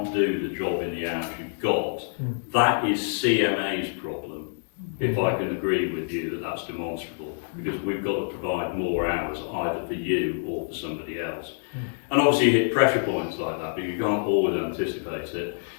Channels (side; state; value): right; silent; digital silence